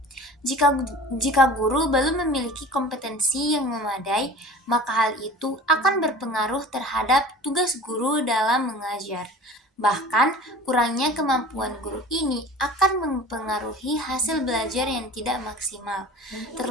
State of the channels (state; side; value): normal; both; correlation 0.40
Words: Jika guru belum memiliki kompetensi yang memadai, maka hal itu akan berpengaruh terhadap tugas guru dalam mengajar. Bahkan, kurangnya kemampuan guru ini akan mempengaruhi hasil belajar yang tidak maksimal.